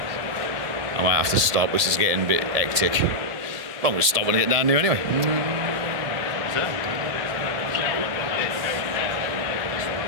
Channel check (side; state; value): left; late; 1.8 ms